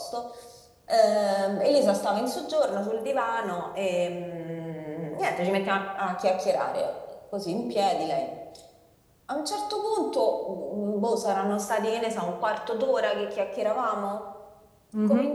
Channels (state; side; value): identical; both; correlation 1.00